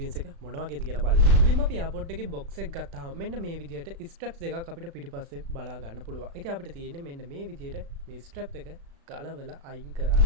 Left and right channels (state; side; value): late; left; 36 ms